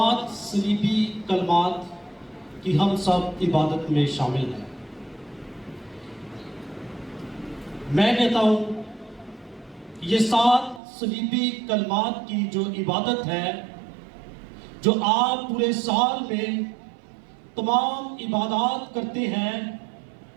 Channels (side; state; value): left; drops out; at 10.8 s